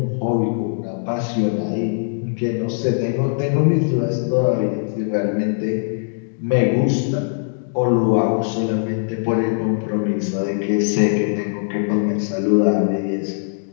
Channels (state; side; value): silent; right; digital silence